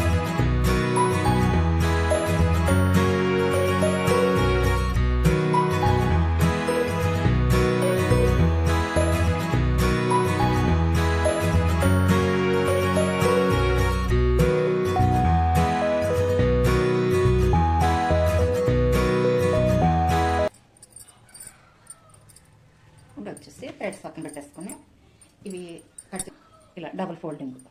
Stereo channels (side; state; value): both; identical; correlation 1.00